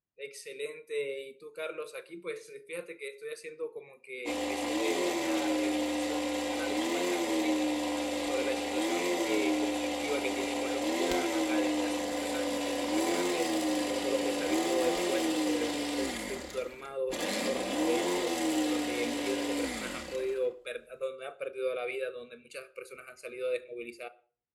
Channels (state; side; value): identical; both; correlation 1.00